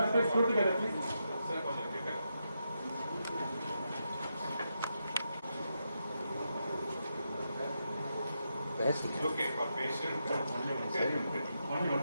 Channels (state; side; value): inverted; both; correlation -0.84